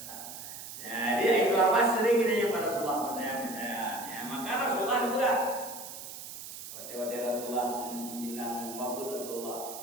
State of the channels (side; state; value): right; noise; hiss, 11 dB below the sound